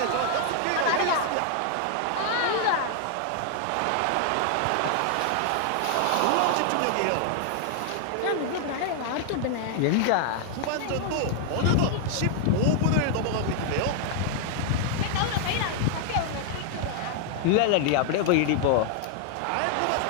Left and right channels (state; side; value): different; both; correlation 0.00